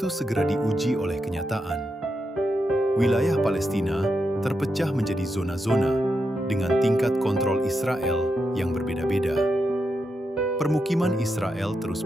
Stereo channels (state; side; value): normal; both; correlation 0.85